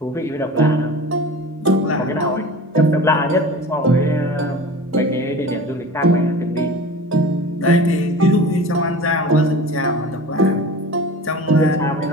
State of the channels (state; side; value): normal; both; correlation 0.37